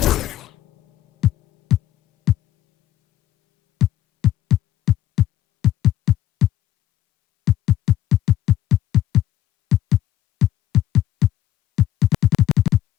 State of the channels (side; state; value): right; quieter; 13.1 dB